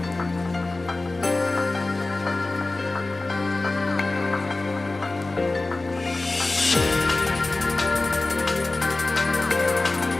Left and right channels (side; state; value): right; quieter; 3.1 dB